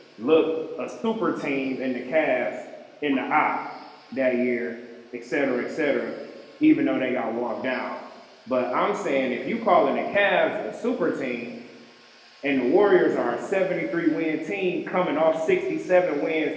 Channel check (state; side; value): identical; both; correlation 1.00